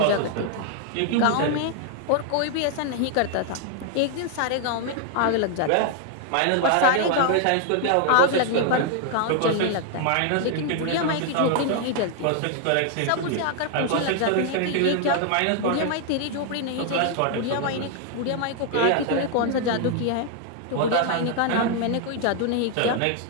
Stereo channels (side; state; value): both; different; correlation 0.00